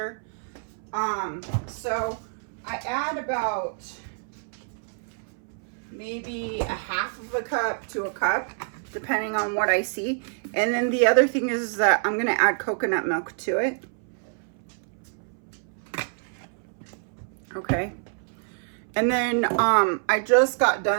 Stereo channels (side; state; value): left; silent; 60 dB below the other